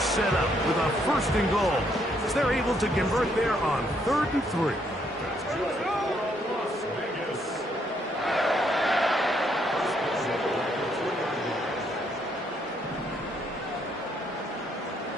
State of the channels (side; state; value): both; normal; correlation 0.72